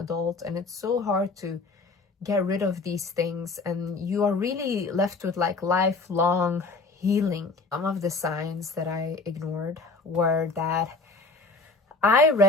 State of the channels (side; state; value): right; quieter; 3.6 dB